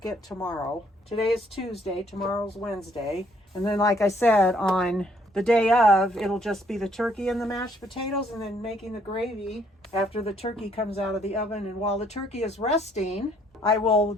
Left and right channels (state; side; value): normal; both; correlation 0.66